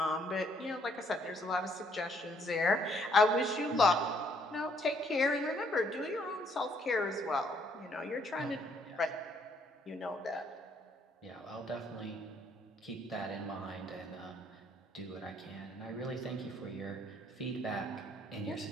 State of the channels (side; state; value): both; normal; correlation 0.67